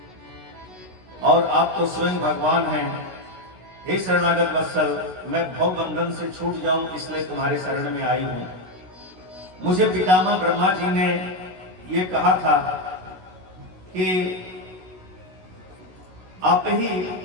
और आप तो स्वयं भगवान हैं। हे शरणागत वत्सल, मैं भव बंधन से छूट जाऊं इसलिए तुम्हारे शरण में आई हूं। मुझे पितामह ब्रह्मा जी ने ये कहा था कि आप ही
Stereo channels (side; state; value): left; late; 16 ms